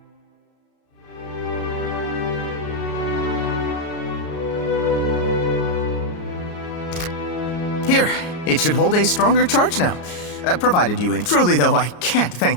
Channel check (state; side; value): late; right; 34 ms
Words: Here, it should hold a stronger charge now. Provided you Truly, though, I can't